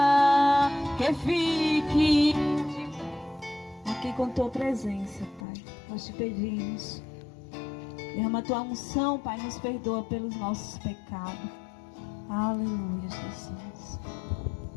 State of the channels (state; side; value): drops out; right; at 5.5 s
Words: que fique aqui com tua presença, Pai. Nós te pedimos, derrama a tua unção, Pai, nos perdoa pelos nossos pecados. Aleluia, Jesus.